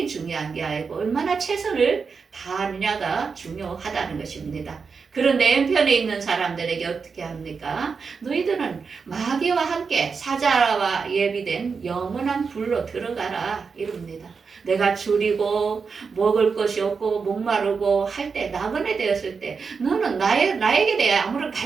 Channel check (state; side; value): quieter; left; 5.3 dB